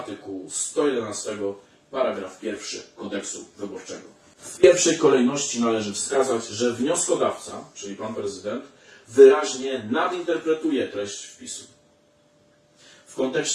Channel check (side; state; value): both; identical; correlation 1.00